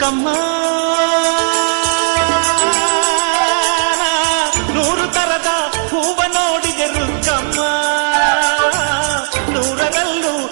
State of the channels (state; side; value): silent; left; digital silence